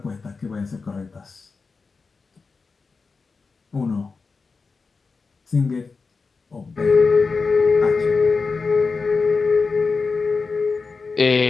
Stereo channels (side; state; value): right; quieter; 4.5 dB